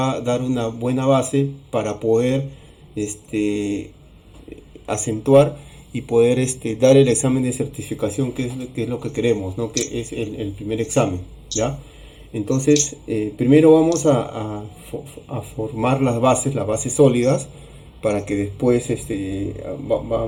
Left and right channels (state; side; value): identical; both; correlation 1.00